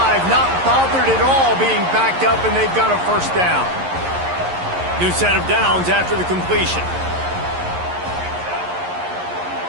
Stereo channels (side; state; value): left; late; 11 ms